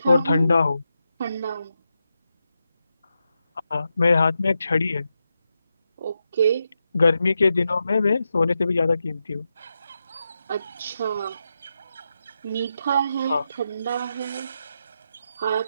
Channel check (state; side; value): inverted; both; correlation -0.87